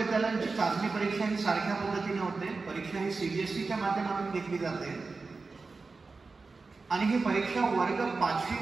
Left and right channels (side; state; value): left; quieter; 4.1 dB